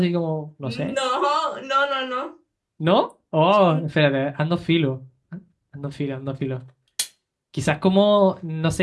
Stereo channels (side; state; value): both; identical; correlation 1.00